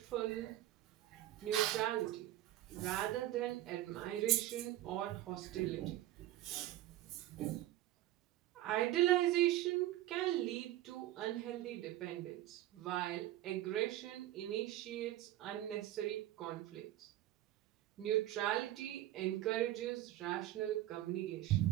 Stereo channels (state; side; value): quieter; left; 14.3 dB